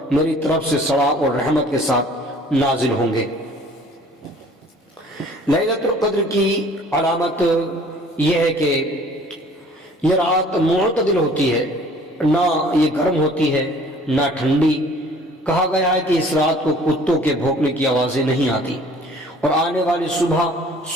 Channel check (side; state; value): both; normal; correlation 0.52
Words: میری طرف سے ثواب اور رحمت کے ساتھ نازل ہوں گے۔ لیلۃ القدر کی علامت یہ ہے کہ یہ رات معتدل ہوتی ہے، نہ یہ گرم ہوتی ہے نہ ٹھنڈی۔ کہا گیا ہے کہ اس رات کو کتوں کے بھونکنے کی آوازیں نہیں آتی، اور آنے والی صبح